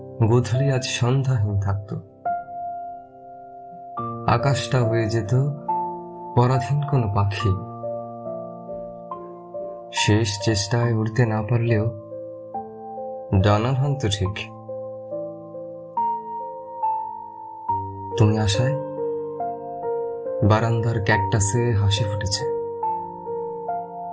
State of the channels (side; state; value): both; identical; correlation 1.00